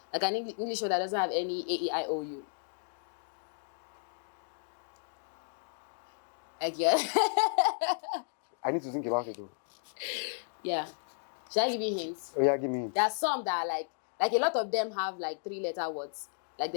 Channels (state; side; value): silent; right; digital silence